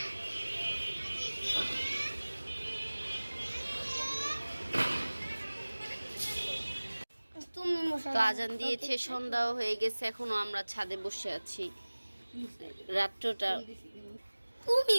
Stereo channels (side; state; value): both; inverted; correlation -1.00